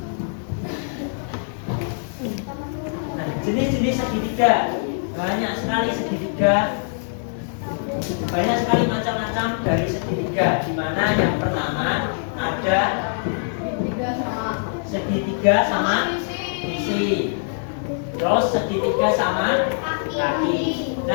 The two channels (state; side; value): silent; right; digital silence